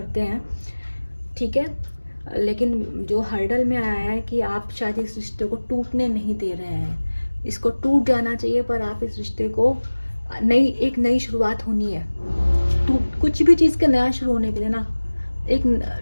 हैं, ठीक है। लेकिन जो हर्डल में आया है कि आप शायद इस रिश्ते को टूटने नहीं दे रहे हैं। इसको टूट जाना चाहिए, पर आप इस रिश्ते को एक नई शुरुआत होनी है। कुछ भी चीज़ का नया शुरू होने के लिए ना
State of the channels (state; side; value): inverted; both; correlation -1.00